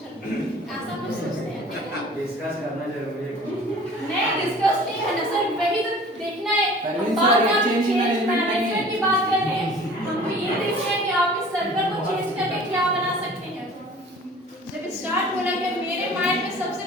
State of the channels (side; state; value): both; normal; correlation 0.46